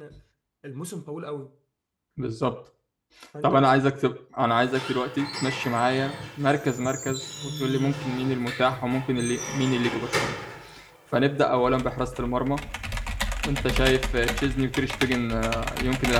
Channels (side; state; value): both; identical; correlation 1.00